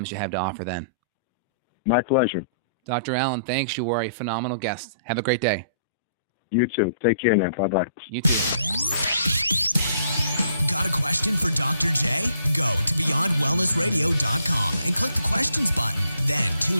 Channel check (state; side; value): inverted; both; correlation -0.63